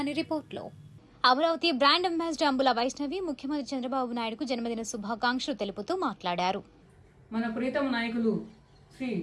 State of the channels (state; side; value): identical; both; correlation 1.00